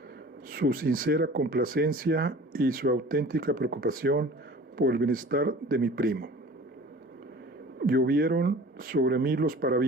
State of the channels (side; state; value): both; normal; correlation 0.43